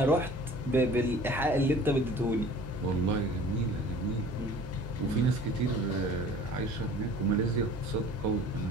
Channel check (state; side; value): normal; both; correlation 0.46